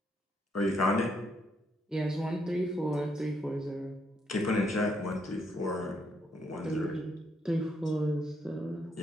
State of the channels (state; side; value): normal; both; correlation 0.74